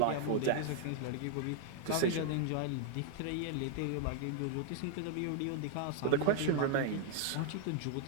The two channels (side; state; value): both; different; correlation 0.00